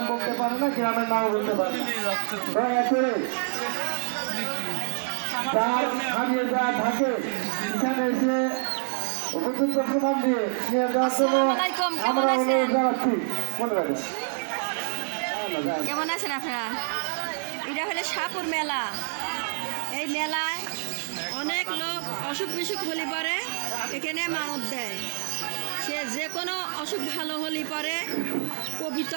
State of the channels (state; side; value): silent; left; digital silence